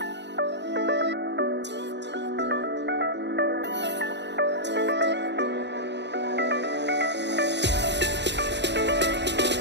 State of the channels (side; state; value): left; late; 0.51 ms